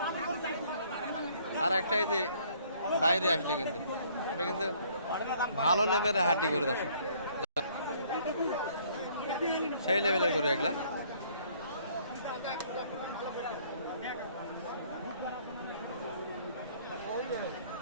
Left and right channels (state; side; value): inverted; both; correlation -0.61